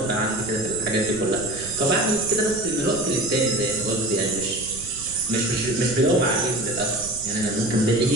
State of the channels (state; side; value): noise; right; rumble, 16 dB below the sound